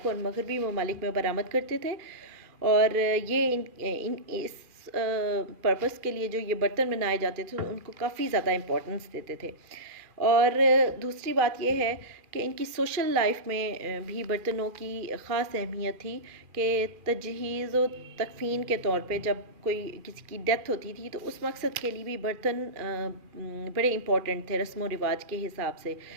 और मगरबी ममालिक में बरामद करते थे। और ये इस पर्पस के लिए जो ये बर्तन बनाए जाते थे उनको काफ़ी ज़्यादा इम्पोर्टेंस देते थे। और दूसरी बात यह है कि इनकी सोशल लाइफ में भी बर्तनों की ख़ास अहमियत थी कि तजहीज़ व तकफ़ीन के तौर पे जब कोई किसी की डेथ होती थी तो उस मकसद के लिए भी बर्तन बड़े इम्पॉर्टेंट थे रस्म व रिवाज के हिसाब से।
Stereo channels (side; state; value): left; late; 2.4 ms